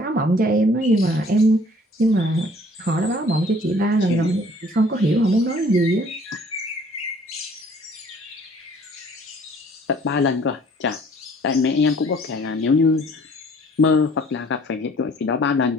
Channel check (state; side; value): normal; both; correlation 0.55